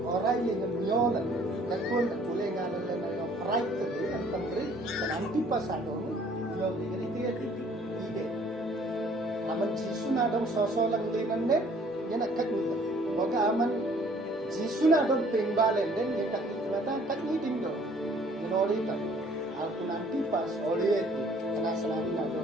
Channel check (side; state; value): both; normal; correlation 0.57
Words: orai lenga nyolan kakul boleh ngalan na right to be and tambri dan antipas ada nyol lenga itu ide aman jisu na dong sosolang linande yan akak nito boga aman jisu na dong pingbalen den yan akak nitin do ginori ta aku nanti pas oleh itu karena selalu na